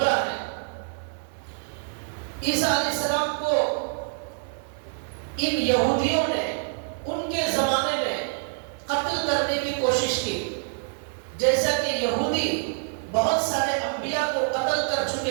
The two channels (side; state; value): left; silent; digital silence